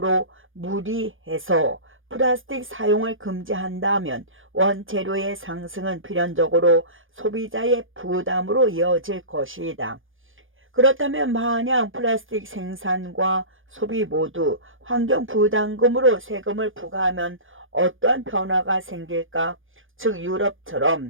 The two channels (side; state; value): left; late; 0.58 ms